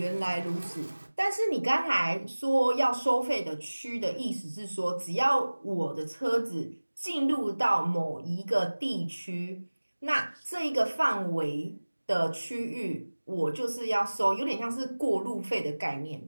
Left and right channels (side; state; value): both; inverted; correlation -1.00